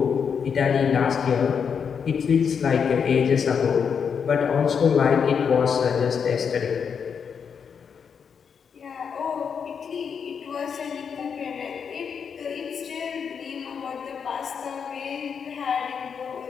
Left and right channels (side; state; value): right; quieter; 6.7 dB